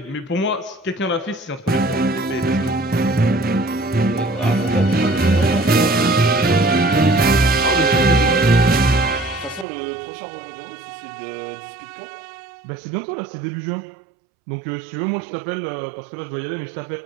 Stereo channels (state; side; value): drops out; left; at 9.7 s